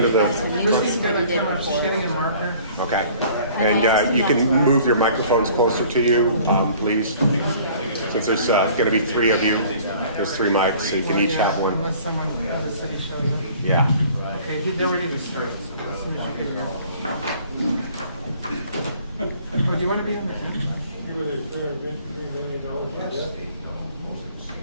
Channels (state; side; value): inverted; both; correlation -0.52